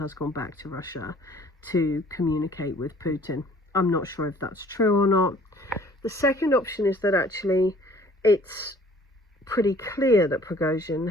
gone back to Russia to communicate with Putin. I'm not sure if that's true or not. The second option is that actually it's pretty clear that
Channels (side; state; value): both; normal; correlation 0.54